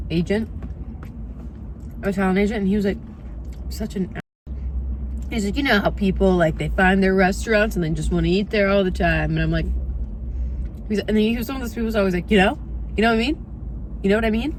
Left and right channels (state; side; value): identical; both; correlation 1.00